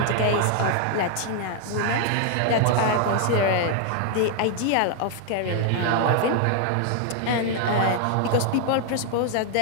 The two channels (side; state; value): both; different; correlation 0.00